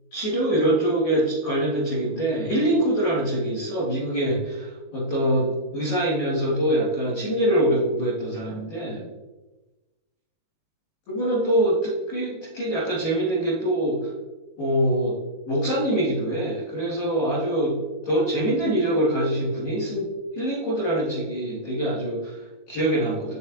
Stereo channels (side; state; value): right; late; 19 ms